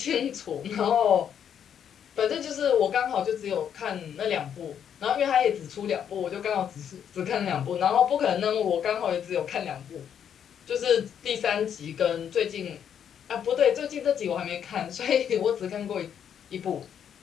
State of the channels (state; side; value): quieter; right; 8.7 dB